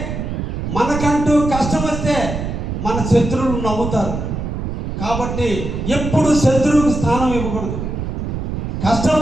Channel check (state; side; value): noise; right; rumble, 4 dB below the sound